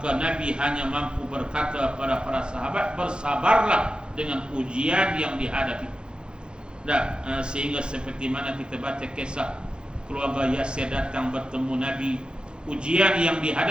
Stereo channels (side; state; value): left; late; 0.051 ms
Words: Nabi hanya mampu berkata kepada para sahabat, bersabarlah dengan ujian yang dihadapi. Sehingga seperti mana kita baca kisah keluarga Yasir datang bertemu Nabi, ujian yang